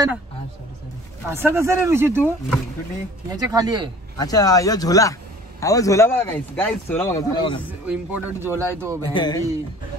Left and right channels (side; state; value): both; normal; correlation 0.48